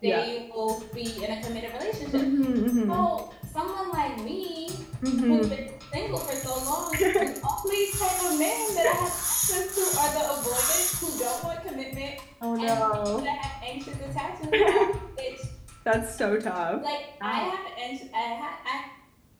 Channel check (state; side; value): identical; both; correlation 1.00